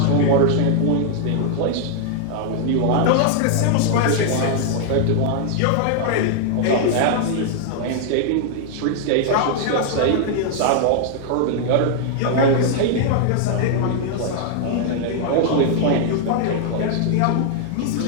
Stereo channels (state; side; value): different; both; correlation 0.00